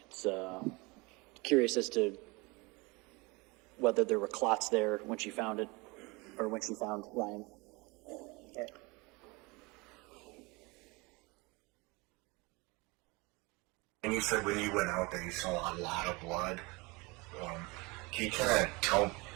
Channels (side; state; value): left; quieter; 25.8 dB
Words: it's curious as to whether there were clots there when she found it, or when she found Ryan. Okay. And you said when you went out there, you saw a lot of blood. Can you kind of tell,